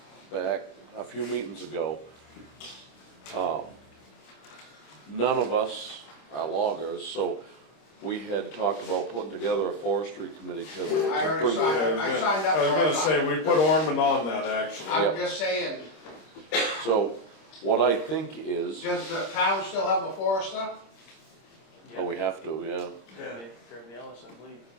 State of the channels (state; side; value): late; right; 26 ms